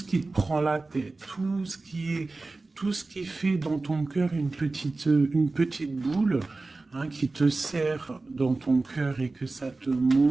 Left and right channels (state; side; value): quieter; left; 3.4 dB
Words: qui te prend la tête, tout ce qui fait dans ton cœur une petite boule, hein, qui te serre dans ton cœur et que ça te